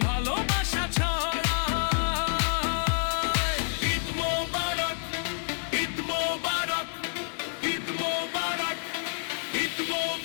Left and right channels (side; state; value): right; silent; 59 dB below the other